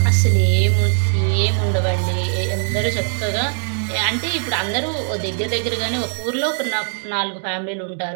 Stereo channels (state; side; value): silent; left; digital silence